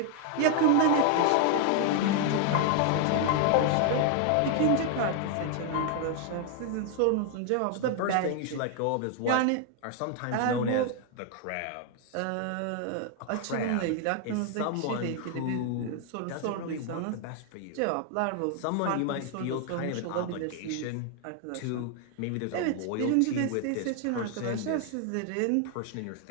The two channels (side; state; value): both; different; correlation 0.00